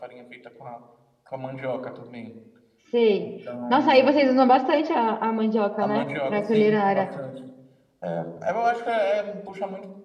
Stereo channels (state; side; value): identical; both; correlation 1.00